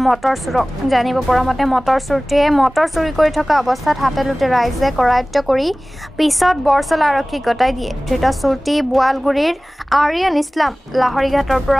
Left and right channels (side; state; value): both; normal; correlation 0.98